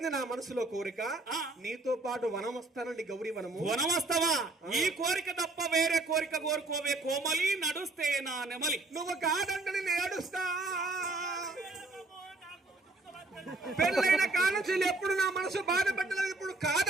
నా మనసులో కోరిక ఆ. నీతో పాటు వనం వస్తానండి గౌరీ వనము వనమస్తవా ఈ కోరిక తప్ప వేరే కోరిక కోరుకోవే కోమలి నడుస్తే నా నెమలి. నువ్వు కాదంటని నేను ఏడుస్తా పెళ్ళైన కానుంచి ఎప్పుడు నా మనసు బాధపడలేదు ఇప్పుడు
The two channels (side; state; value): left; quieter; 3.1 dB